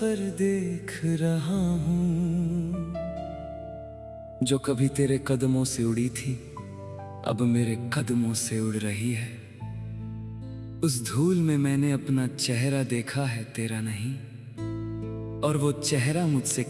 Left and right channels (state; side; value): identical; both; correlation 1.00